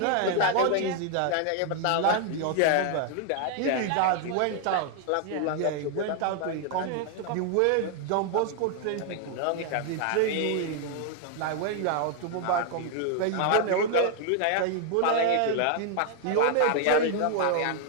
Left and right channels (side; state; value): both; different; correlation 0.00